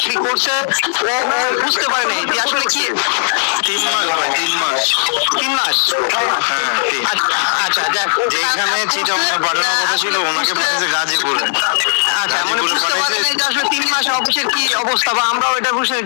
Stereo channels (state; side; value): silent; right; digital silence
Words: করছে, ও বুঝতে পারে নাই যে আসলে কি 3 মাস ভাই, 3 মাস 3 মাস। আচ্ছা যাক, যেখানে চিটাগাং পাঠানোর কথা ছিল ওনাকে পাঠিয়েছে গাজীপুরে। আচ্ছা মানে বুঝতে পারেন যে আসলে 3 মাস অফিসের কি অবস্থা, বা আমরাও এটা বুঝতে,